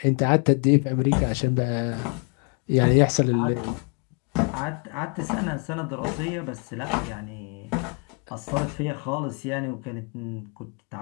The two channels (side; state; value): right; quieter; 35.3 dB